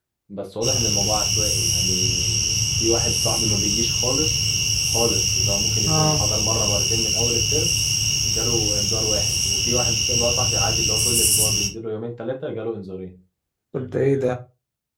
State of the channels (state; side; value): identical; both; correlation 1.00